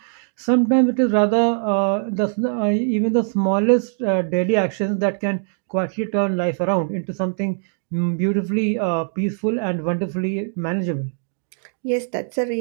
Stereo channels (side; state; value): left; silent; digital silence